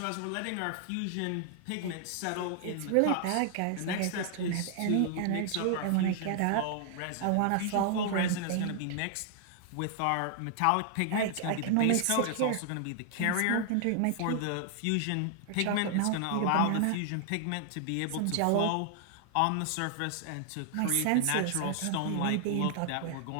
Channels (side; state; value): both; different; correlation 0.00